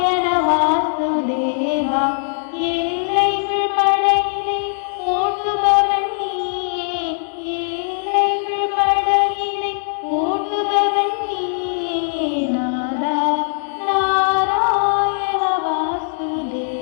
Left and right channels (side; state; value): right; silent; digital silence